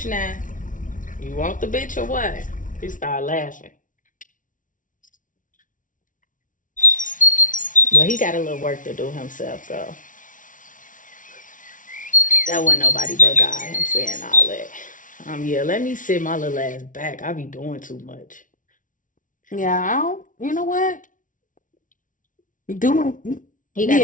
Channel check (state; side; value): late; right; 0.38 ms